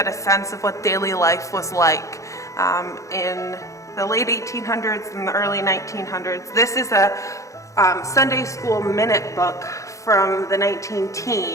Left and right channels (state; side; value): late; right; 0.15 ms